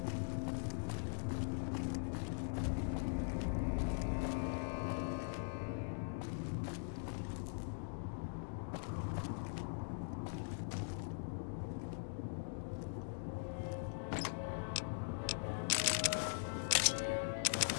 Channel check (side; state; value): right; silent; digital silence